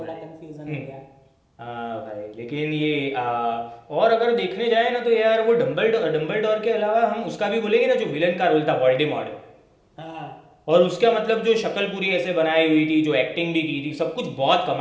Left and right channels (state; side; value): identical; both; correlation 1.00